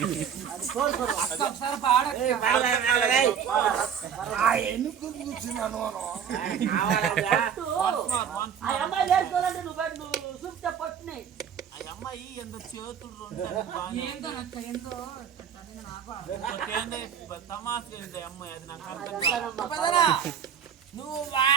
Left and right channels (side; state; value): left; quieter; 8.1 dB